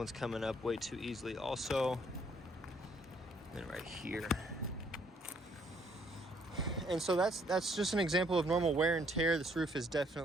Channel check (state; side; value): normal; both; correlation 0.66